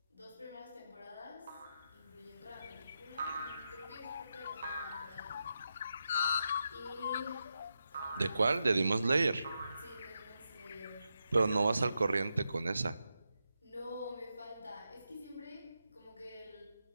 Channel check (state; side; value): inverted; both; correlation -0.87